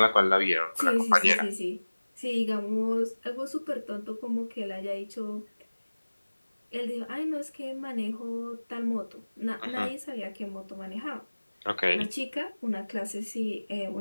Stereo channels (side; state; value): both; inverted; correlation -1.00